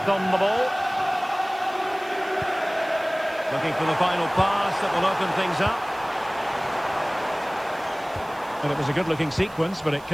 on the ball. Looking for the final pass that will open things up. And it was a good-looking sequence, but it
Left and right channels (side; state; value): right; noise; hiss, 24 dB below the sound